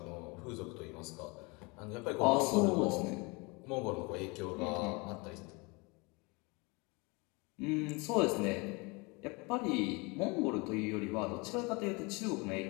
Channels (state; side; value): quieter; right; 28.1 dB